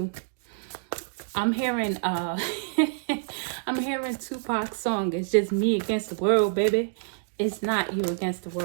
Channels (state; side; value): silent; left; digital silence